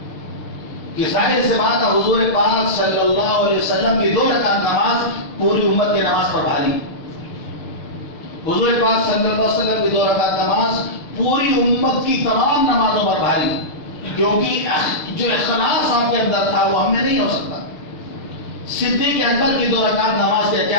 کہ ظاہر سے بات ہے حضور پاک صلی اللہ علیہ وسلم کی 2 رکعت نماز پوری امت کی نماز پر بھاری. حضور پاک صلی اللہ علیہ وسلم کی 2 رکعت نماز پوری امت کی تمام نمازوں پر بھاری، کیونکہ جو اخلاص آپ کے اندر تھا وہ ہم میں نہیں ہو سکتا. صدیق اکبر کی 2 رکعت نماز کا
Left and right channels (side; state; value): right; late; 6.7 ms